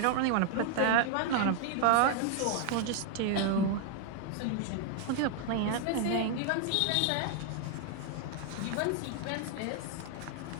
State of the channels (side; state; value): both; different; correlation 0.00